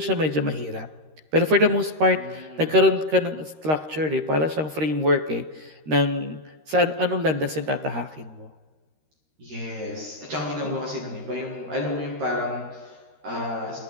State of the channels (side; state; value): left; late; 13 ms